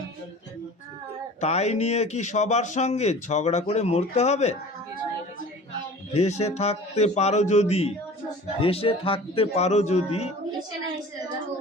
তাই নিয়ে কি সবার সঙ্গে ঝগড়া করে মরতে হবে? ভেসে থাকতে পারো যদি, ভেসে থাকতে পারো যদি,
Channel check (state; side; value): normal; both; correlation 0.42